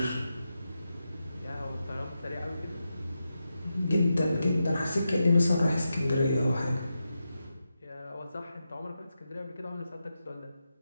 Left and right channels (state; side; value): inverted; both; correlation -0.88